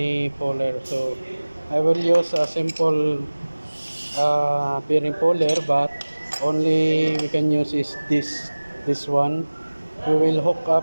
puller. So I will use a simple bearing puller, but only we can use is this one. We will hook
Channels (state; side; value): inverted; both; correlation -1.00